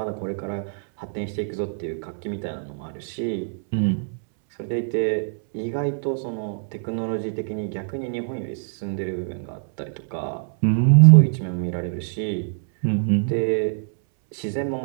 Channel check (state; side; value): silent; left; 63 dB below the other